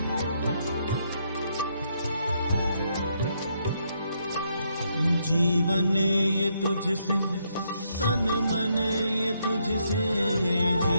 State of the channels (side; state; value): both; inverted; correlation -0.76